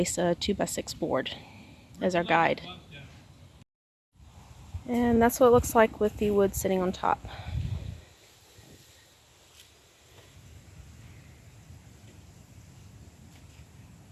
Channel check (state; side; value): identical; both; correlation 1.00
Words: a 2x6 board as our guide. And that's what it looks like with the wood sitting on top.